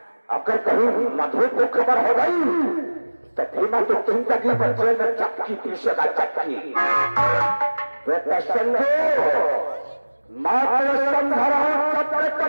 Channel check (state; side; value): inverted; both; correlation -1.00